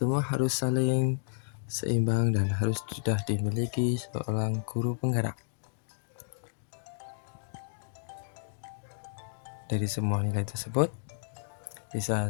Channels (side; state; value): right; silent; digital silence